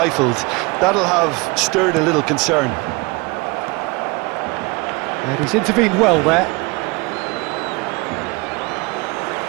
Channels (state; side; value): quieter; left; 25.6 dB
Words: That'll have stirred a little concern. And he's intervened well there.